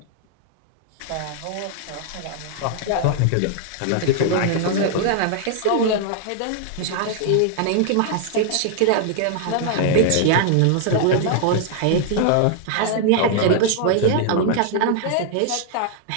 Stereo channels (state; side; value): different; both; correlation 0.00